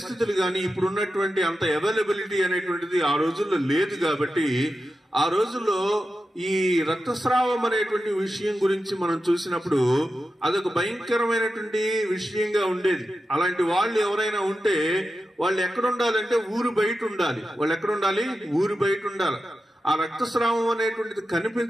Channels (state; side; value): normal; both; correlation 0.91